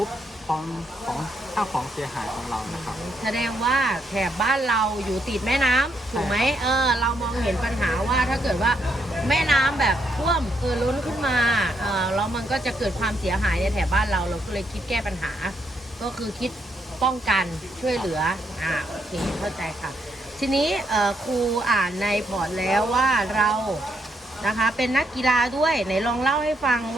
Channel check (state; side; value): normal; both; correlation 0.76